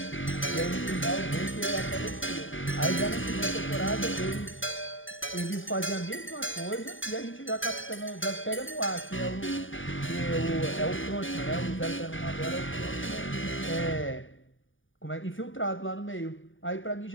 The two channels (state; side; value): late; right; 0.57 ms